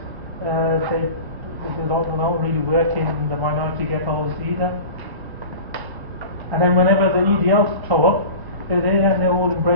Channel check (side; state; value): left; late; 1.0 ms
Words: they don't really work in the minority ghettos either. And then whenever the EDLs show up, they're there and they're all